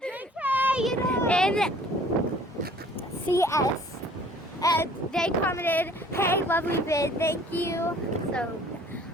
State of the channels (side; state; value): both; normal; correlation 0.53